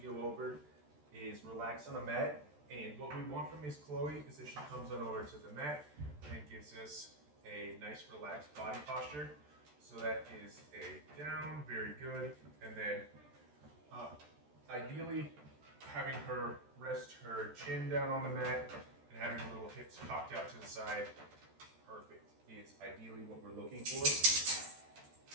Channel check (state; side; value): late; left; 13 ms